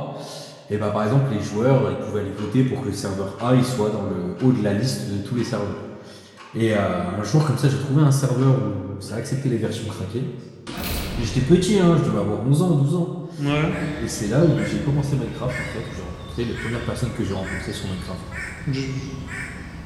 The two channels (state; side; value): identical; both; correlation 1.00